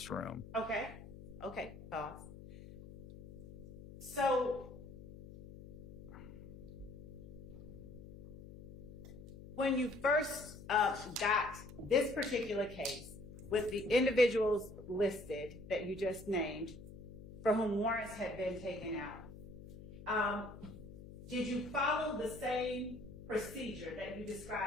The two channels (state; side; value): noise; left; hum, 14 dB below the sound